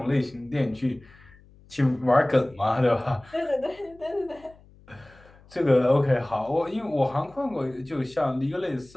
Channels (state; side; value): noise; left; hum, 26 dB below the sound